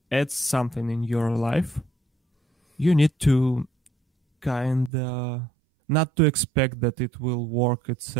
add something in your life, you need to kind of not to expect that it will work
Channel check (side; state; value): left; drops out; at 4.9 s